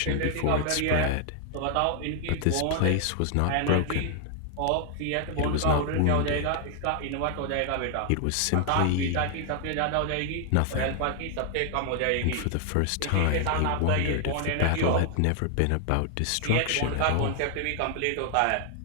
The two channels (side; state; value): both; different; correlation 0.00